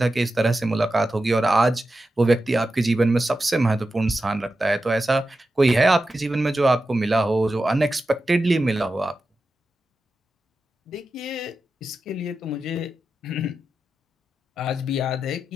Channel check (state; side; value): normal; both; correlation 0.91